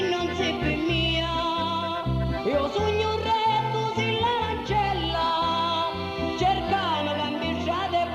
non sei per mia, io sogno un re tu sei l'ancella, cercamo cambiare e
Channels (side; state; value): both; identical; correlation 1.00